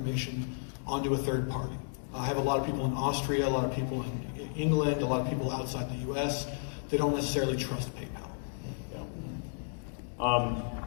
onto a third party. I have a lot of people in Austria, a lot of people in England, a lot of people outside the US. They don't necessarily trust PayPal. Yeah.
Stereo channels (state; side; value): silent; right; digital silence